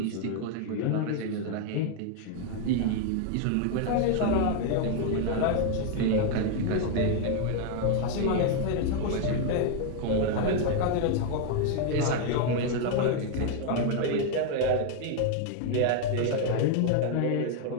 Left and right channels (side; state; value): both; different; correlation 0.01